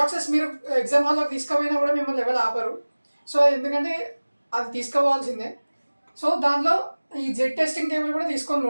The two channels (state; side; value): inverted; both; correlation -1.00